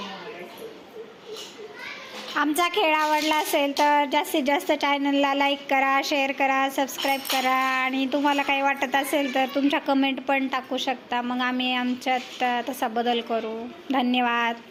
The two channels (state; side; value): identical; both; correlation 1.00